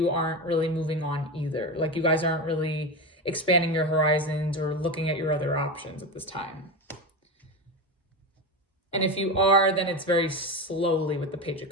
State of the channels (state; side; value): normal; both; correlation 0.19